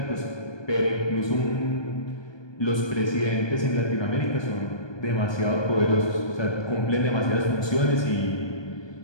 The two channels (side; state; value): right; late; 1.2 ms